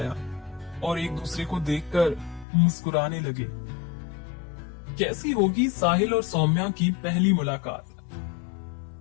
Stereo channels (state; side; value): drops out; right; at 2.5 s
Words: और एक दूसरे को देखकर मुस्कुराने लगे। कैसी होगी साहिल और सौम्या की पहली मुलाकात?